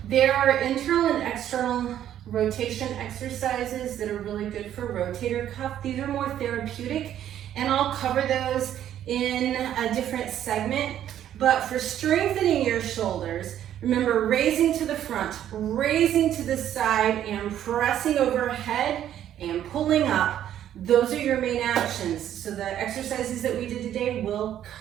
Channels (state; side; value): quieter; left; 11.0 dB